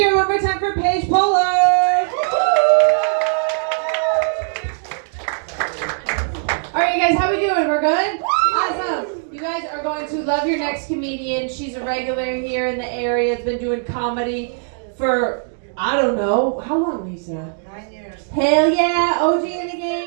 it one more time for Paige Pollard. All right, you guys, how we doing? We're good? Awesome. You guys are going to love your next comedian. She's a regular here in the area. Has been doing comedy for, I don't know, how long, Lisa? 9 years. Hell yeah, OG in the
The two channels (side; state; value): left; silent; digital silence